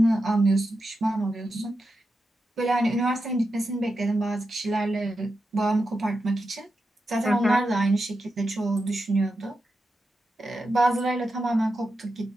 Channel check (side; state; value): both; normal; correlation 0.88